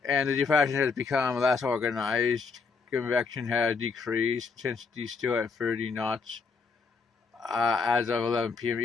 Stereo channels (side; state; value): right; quieter; 4.9 dB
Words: And the depression has become less organized. Convection has decreased. Intensity still at 30 knots as of 11 p.m.